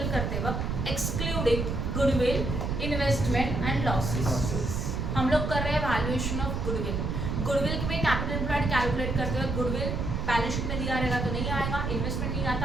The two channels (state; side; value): noise; right; rumble, 1 dB below the sound